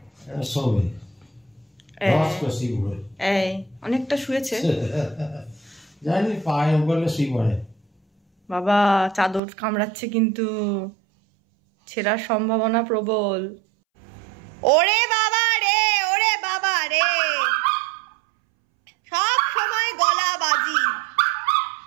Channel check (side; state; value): left; drops out; at 9.4 s